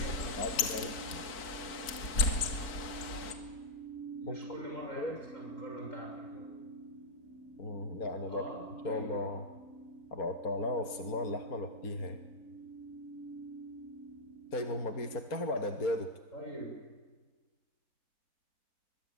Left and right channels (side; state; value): right; late; 4.5 ms